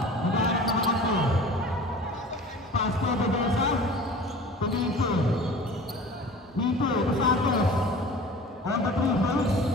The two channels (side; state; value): both; normal; correlation 0.41